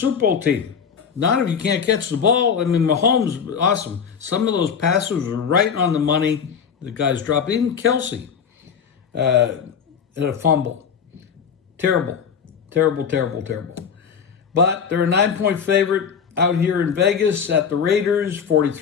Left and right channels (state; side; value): quieter; right; 6.9 dB